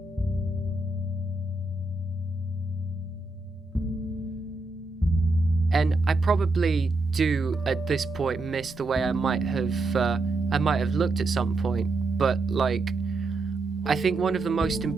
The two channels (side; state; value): left; quieter; 3.2 dB